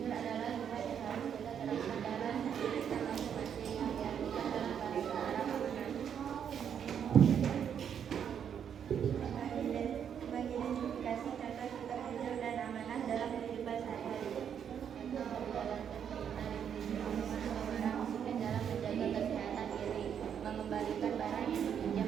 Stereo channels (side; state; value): left; quieter; 8.3 dB